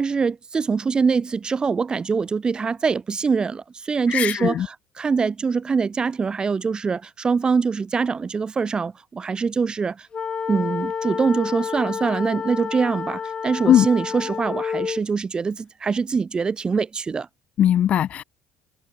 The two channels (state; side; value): normal; both; correlation 0.79